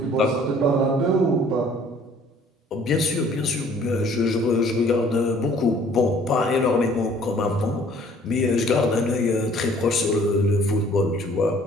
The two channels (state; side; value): normal; both; correlation 0.56